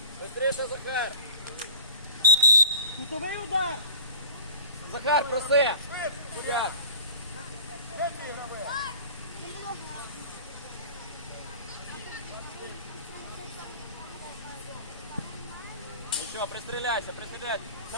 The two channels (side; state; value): both; inverted; correlation -0.43